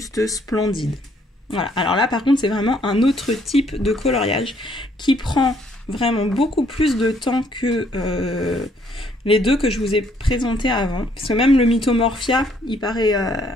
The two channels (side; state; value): both; normal; correlation 0.66